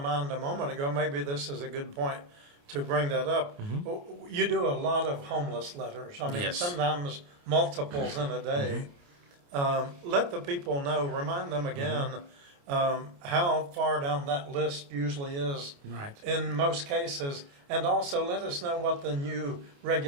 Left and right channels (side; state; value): left; late; 28 ms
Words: a moment ago. Maybe this is a good point to bring that up. You do a lot of homeless letters. I mean, Yes. sometimes multiples in a day. Let the people know, remind them again how far down that list usually is Right. in most cases. And also let us know what the new